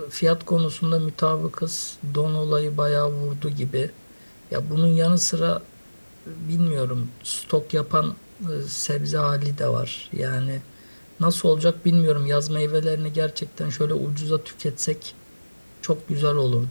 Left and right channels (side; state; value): both; inverted; correlation -1.00